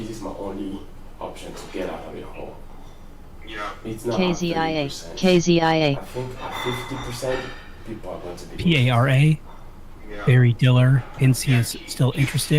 my only option to get out of the hole. Yeah. It's not KZIA. at 30%. KZIA. I think at 50%, people are going to be PARA. Yeah. Barry Diller hints he is still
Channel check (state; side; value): identical; both; correlation 1.00